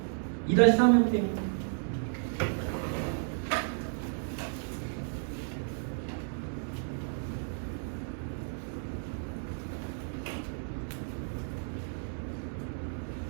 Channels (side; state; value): left; silent; 56 dB below the other